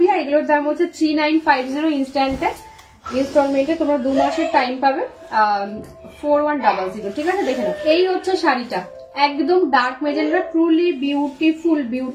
এগুলোর দাম হচ্ছে 3950 ইনস্ট্যান্টে, ইনস্টলমেন্টে তোমরা 2 মাসের টাইম পাবে, 4100, ঠিক আছে। দেখে নাও, এই হচ্ছে শাড়িটা, একদম dark magenta, truly beautiful,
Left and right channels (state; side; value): identical; both; correlation 1.00